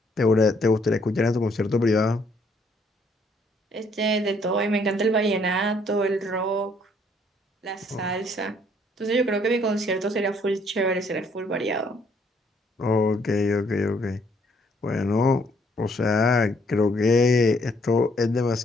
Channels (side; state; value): both; normal; correlation 0.66